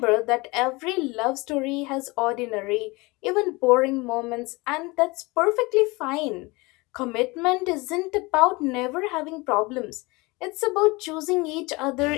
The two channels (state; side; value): quieter; right; 24.5 dB